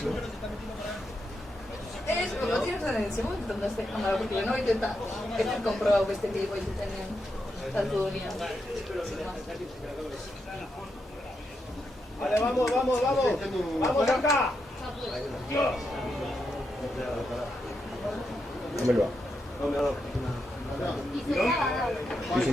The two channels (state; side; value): normal; both; correlation 0.84